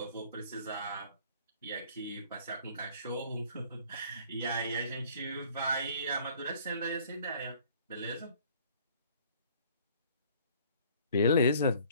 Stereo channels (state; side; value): inverted; both; correlation -0.55